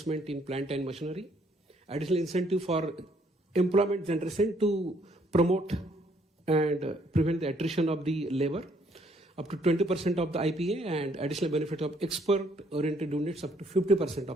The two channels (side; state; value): both; normal; correlation 0.67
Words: in plant and machinery, additional incentive for employment generation to promote and prevent the attrition of the labor, up to 20% of the IPA, and additional benefit of export-oriented units up to 50%